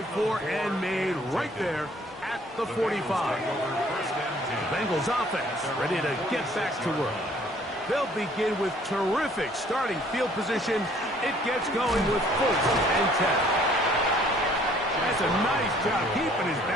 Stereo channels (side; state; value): both; normal; correlation 0.59